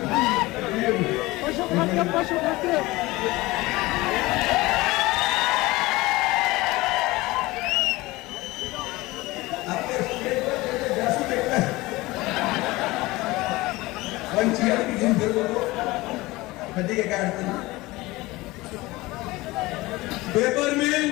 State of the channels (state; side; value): quieter; right; 20.4 dB